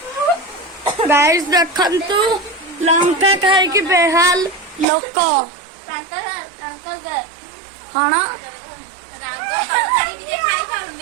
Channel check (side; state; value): left; drops out; at 4.9 s